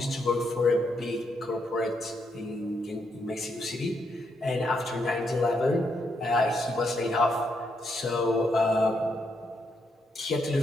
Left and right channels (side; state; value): both; normal; correlation 0.78